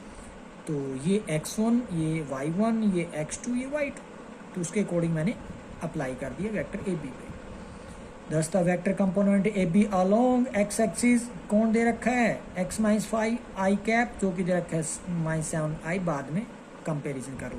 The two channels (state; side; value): identical; both; correlation 1.00